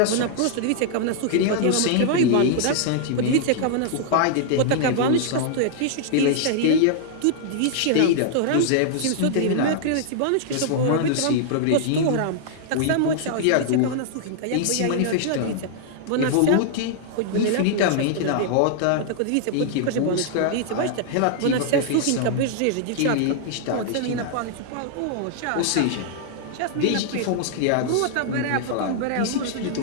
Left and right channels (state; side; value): different; both; correlation -0.01